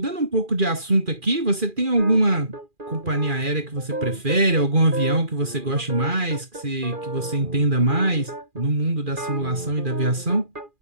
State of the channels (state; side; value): late; left; 2.4 ms